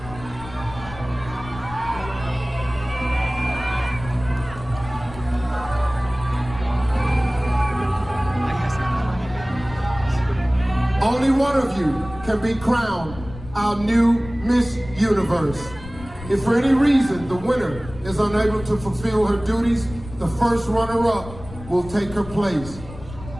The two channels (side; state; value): left; noise; rumble, 15 dB below the sound